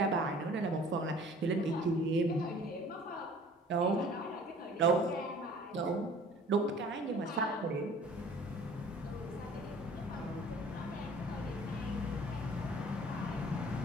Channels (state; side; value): normal; both; correlation 0.49